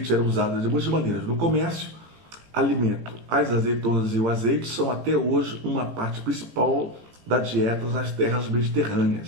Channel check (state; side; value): late; left; 17 ms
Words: era usado de muitas maneiras. No comércio, alimento. As azeitonas e o azeite são até hoje uma parte principal da dieta nas terras